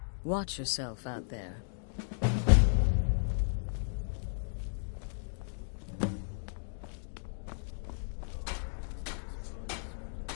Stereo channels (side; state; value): right; silent; digital silence